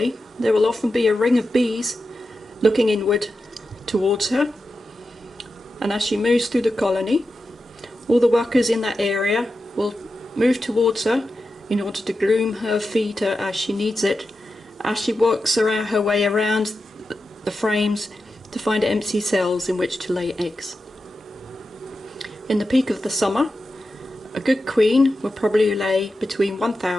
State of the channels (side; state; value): both; normal; correlation 0.90